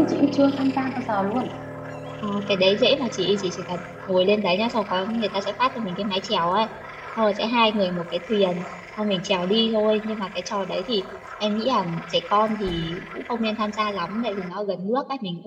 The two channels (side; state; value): both; identical; correlation 1.00